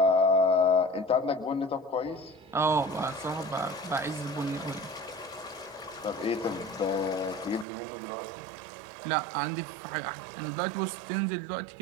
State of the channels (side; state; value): left; drops out; at 7.7 s